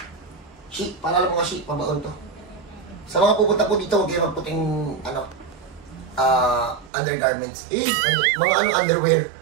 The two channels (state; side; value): drops out; left; at 6.9 s